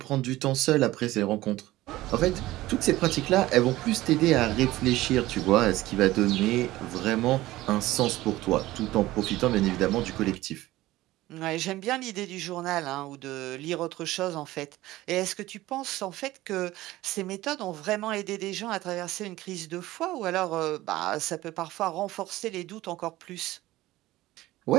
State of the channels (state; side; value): quieter; left; 17.0 dB